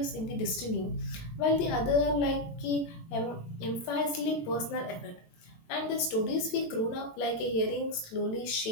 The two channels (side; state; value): right; late; 18 ms